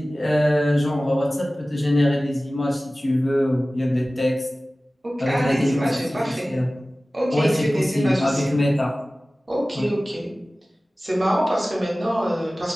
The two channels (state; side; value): normal; both; correlation 0.97